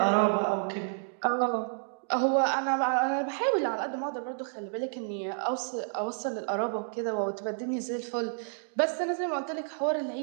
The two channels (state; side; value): silent; left; digital silence